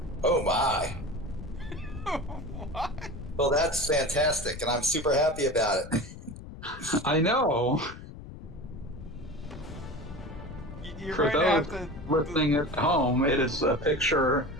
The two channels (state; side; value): noise; left; rumble, 14 dB below the sound